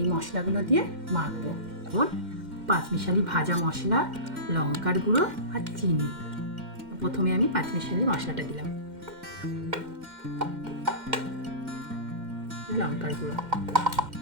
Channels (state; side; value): late; left; 2.1 ms